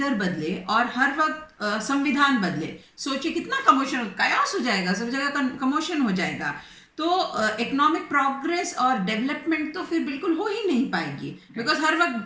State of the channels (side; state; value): both; identical; correlation 1.00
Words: बदले और हर वक्त संविधान बदले, सोचिए कितना कमोशन, कायोस हो जाएगा, सब जगह कमोशन हो जाएगा। तो इकोनॉमिक प्रोग्रेस और डेवलपमेंट तो फिर बिल्कुल हो ही नहीं पाएगी, बिकॉज हर